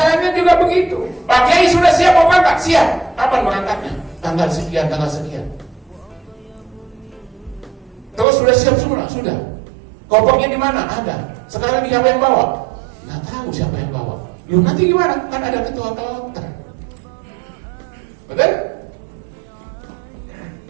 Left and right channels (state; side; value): drops out; left; at 8.2 s